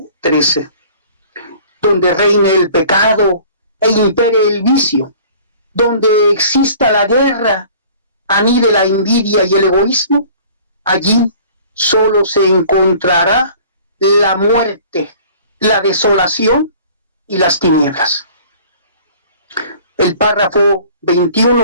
donde reine el pecado e impere el vicio, donde exista la guerra, anide la envidia y el egoísmo, allí solo se encontrará la muerte, la desolación y las tinieblas. El párrafo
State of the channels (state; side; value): inverted; both; correlation -0.49